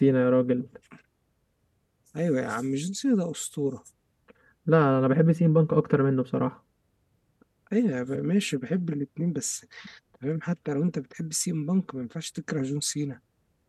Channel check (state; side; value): identical; both; correlation 1.00